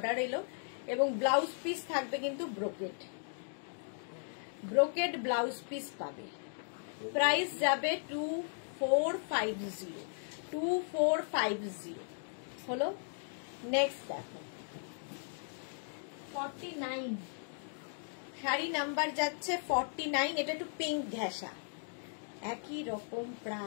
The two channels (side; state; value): right; silent; digital silence